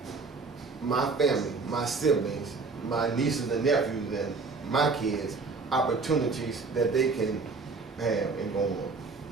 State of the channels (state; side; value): quieter; left; 4.2 dB